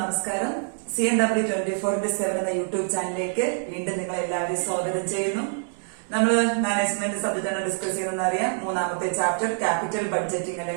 നമസ്കാരം. CNW24/7 എന്ന യൂട്യൂബ് ചാനലിലേക്ക് വീണ്ടും നിങ്ങൾ എല്ലാവരെയും സ്വാഗതം ചെയ്യുന്നു. നമ്മൾ മാനേജ്മെന്റ് സബ്ജക്റ്റാണ് ഡിസ്കസ് ചെയ്യുന്നതെന്ന് അറിയാം. മൂന്നാമത്തെ ചാപ്റ്റർ ക്യാപിറ്റൽ ബഡ്ജറ്റിംഗ്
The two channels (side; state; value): left; silent; 61 dB below the other